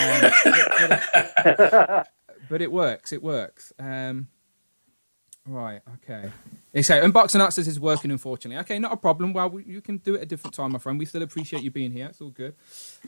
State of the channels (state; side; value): inverted; both; correlation -1.00